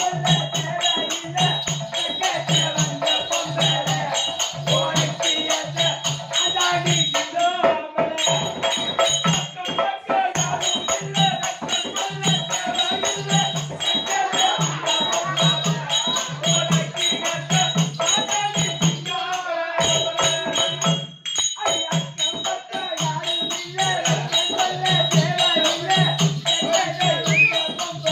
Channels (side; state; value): both; identical; correlation 1.00